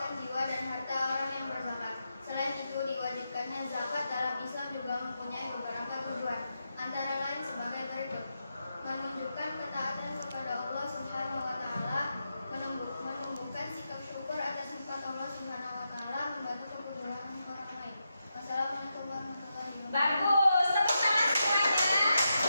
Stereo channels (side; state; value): both; inverted; correlation -0.86